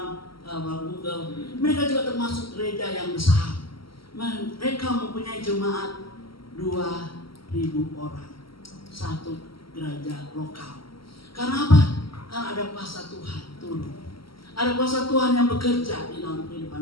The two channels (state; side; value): late; right; 0.74 ms